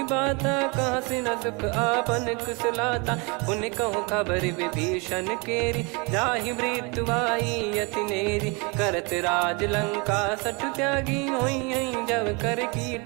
बाता कहाँ से न सुख आपन कुशलाता पुन कहूँ खबर विभीषण केरी जाहि मृत्यु आई यति नेरी करत राज लंका सठ त्यागी होई जब कर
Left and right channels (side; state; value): left; quieter; 30.0 dB